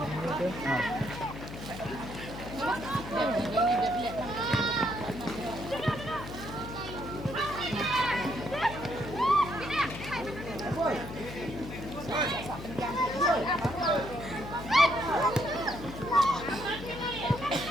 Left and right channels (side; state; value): left; noise; hum, 10 dB below the sound